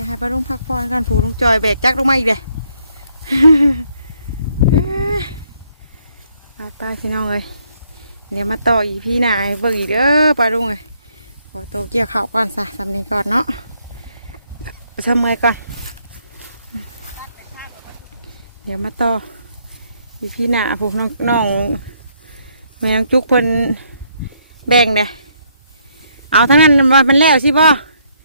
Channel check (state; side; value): inverted; both; correlation -0.71